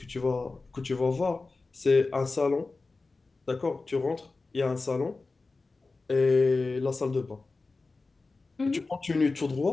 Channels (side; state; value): right; quieter; 3.7 dB